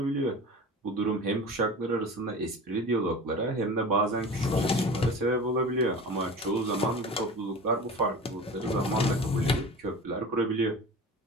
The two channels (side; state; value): both; normal; correlation 0.35